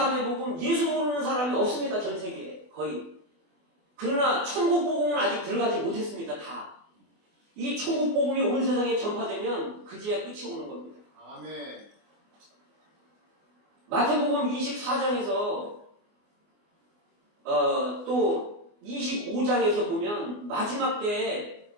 복음, 예수 모르는 사람이 없습니다. 전 세계에 거의. 그러나 천국 복음은 아직 들어가지 못했습니다. 다. 이 천국 복음이 온 세상에 전파되면 그제야 끝이 오는 겁니다. 아멘. 마태복음 24장에서 또 25장에서 보면 마지막 때에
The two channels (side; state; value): left; late; 24 ms